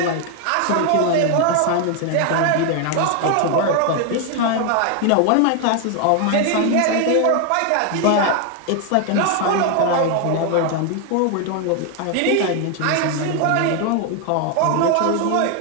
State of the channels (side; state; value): both; different; correlation 0.01